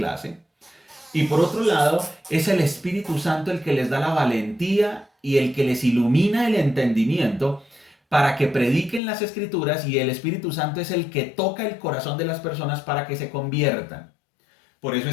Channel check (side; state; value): right; drops out; at 9.0 s